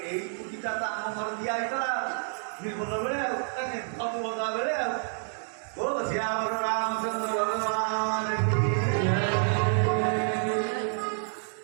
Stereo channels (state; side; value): silent; left; digital silence